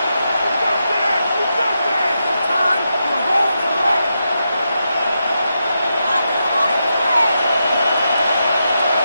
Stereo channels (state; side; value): inverted; both; correlation -0.85